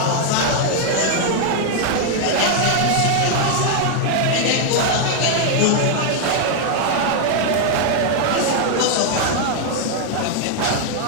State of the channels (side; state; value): both; different; correlation 0.00